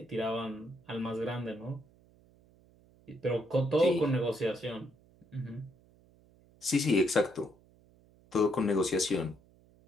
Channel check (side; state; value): right; noise; hum, 29 dB below the sound